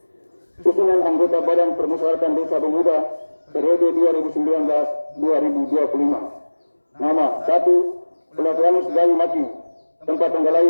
Susunan anggota Badan Permusyawaratan Desa Bunga Muda periode 2019-2025. Nama 1. Pelatihanus Gayu Maki, tempat tanggal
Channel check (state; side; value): inverted; both; correlation -1.00